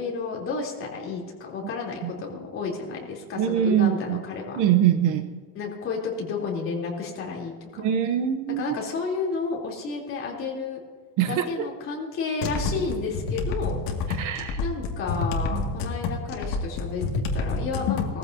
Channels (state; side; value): normal; both; correlation 0.10